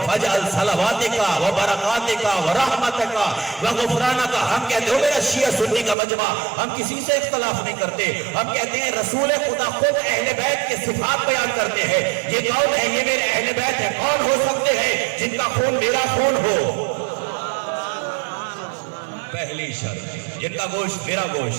فاجعل صلواتک برکاتکا ورحمتکا وغفرانکا۔ ہم کہتے ہو میرا شیعہ سنی کا مجمع، ہم کسی سے اختلاف نہیں کرتے، ہم کہتے ہیں رسول خدا خود اہل بیت کے صفات بیان کرتے ہیں، یہ کون ہے؟ یہ میرے اہل بیت ہے۔ کون ہو سکتے ہیں؟ جن کا خون میرا خون ہو، پہلی شرط، جن کا گوشت میرا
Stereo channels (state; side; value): drops out; left; at 6.0 s